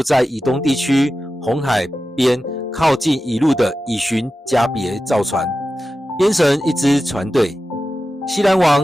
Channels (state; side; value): normal; both; correlation 0.93